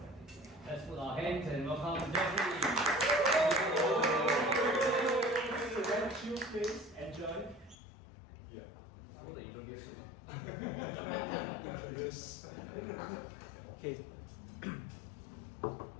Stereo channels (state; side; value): drops out; right; at 7.8 s